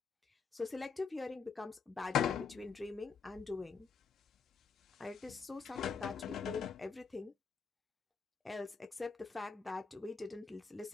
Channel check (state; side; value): quieter; right; 5.4 dB